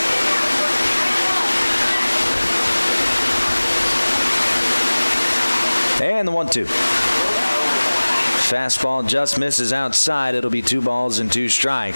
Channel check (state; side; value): inverted; both; correlation -1.00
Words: And the 1-2. Fastball just misses outside. It'll be 2 balls and 2